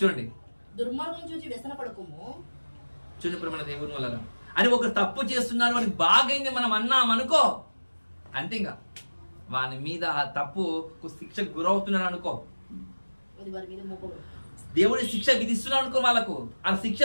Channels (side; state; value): both; inverted; correlation -1.00